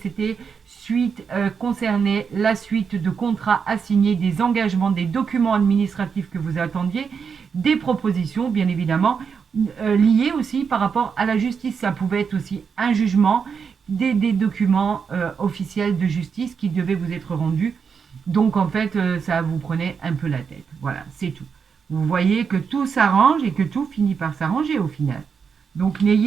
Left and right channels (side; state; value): left; quieter; 6.2 dB